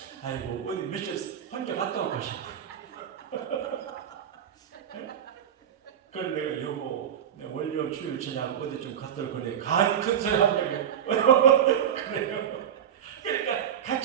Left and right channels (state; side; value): quieter; left; 9.3 dB